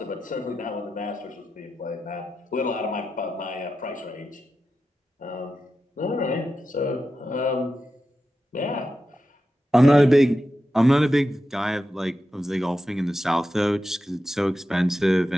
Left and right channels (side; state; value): both; normal; correlation 0.90